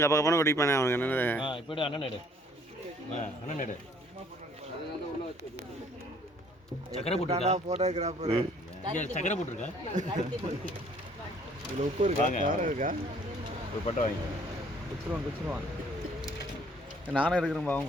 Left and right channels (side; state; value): both; normal; correlation 0.59